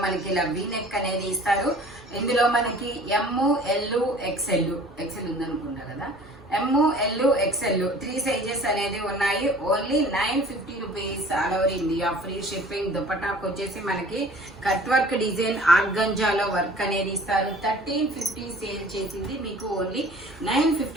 మనకి ఇలా వీ నెక్ అనేది ఇస్తారు. ఇందులో మనకి ఎమ్, ఎల్, ఎక్స్ఎల్ ఉందనుకున్నా కదా, ఎమ్, ఎల్, ఎక్స్ఎల్ 3 సైజెస్ అనేది ఉన్నాయి. Only 950 rupees all over India, free shipping. దుపట్టాకు వచ్చేసి మనకి కట్ వర్క్ డిజైన్ ఆర్గంజాలో వర్క్ అనేది ఇస్తారు. 1350 సేల్ చేసింది మీకు ఓన్లీ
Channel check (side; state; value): both; normal; correlation 0.48